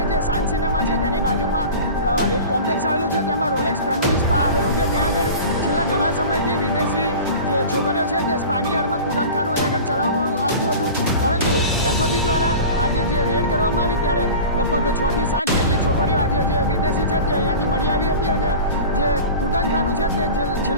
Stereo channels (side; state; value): both; inverted; correlation -0.35